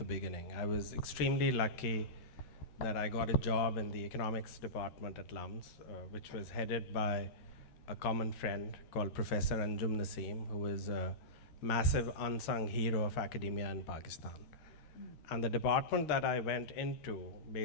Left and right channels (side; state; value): right; late; 13 ms